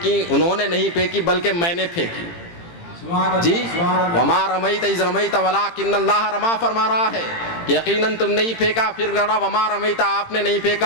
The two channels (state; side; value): late; right; 18 ms